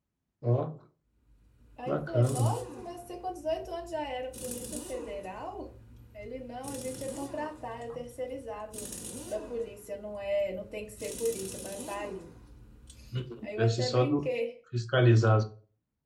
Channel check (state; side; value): identical; both; correlation 1.00